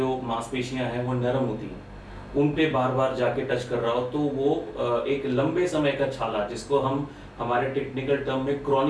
मांसपेशियां हैं, वो नरम होती हैं, उन पे बार बार जाके टच कर रहा हो, तो वो एक लंबे समय का छाला, जिसको हम हमारे टेक्निकल टर्म में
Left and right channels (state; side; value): identical; both; correlation 1.00